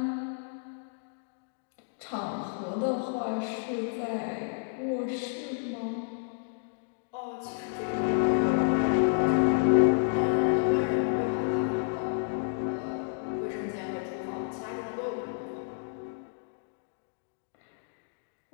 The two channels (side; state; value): right; silent; digital silence